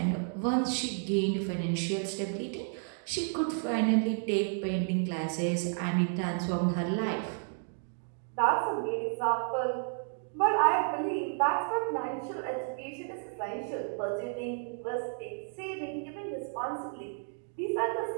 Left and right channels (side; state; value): left; silent; 57 dB below the other